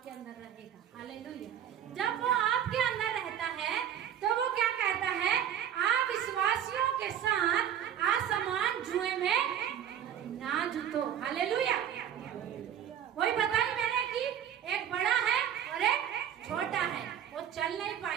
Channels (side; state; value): left; quieter; 9.7 dB